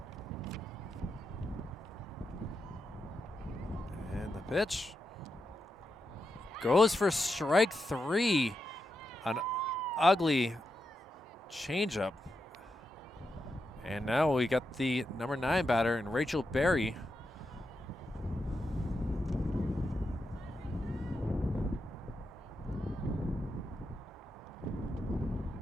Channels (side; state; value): both; normal; correlation 0.86